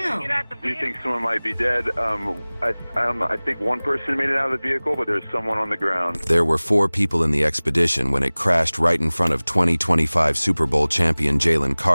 to get out the vehicle? We think someone might be dead. I think one person made it out of the vehicle, but there's someone on the ground. There were 4 people in the Expedition when it crashed right in front of 2025 Super Bowl champion Jalen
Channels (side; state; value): both; inverted; correlation -1.00